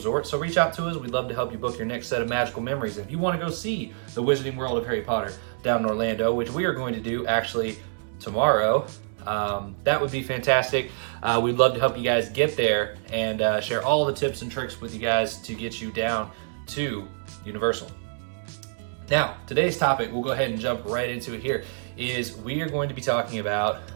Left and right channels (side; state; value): left; silent; 61 dB below the other